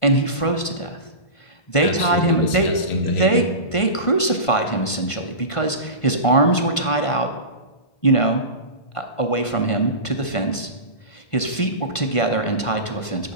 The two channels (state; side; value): late; right; 1.5 ms